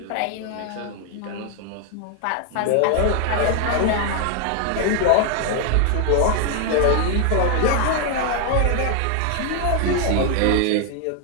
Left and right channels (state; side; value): different; both; correlation 0.00